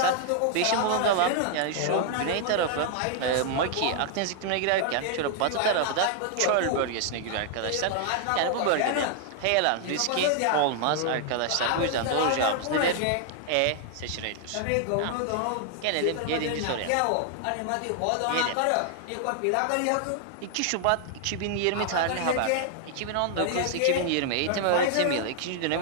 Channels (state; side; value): different; both; correlation 0.00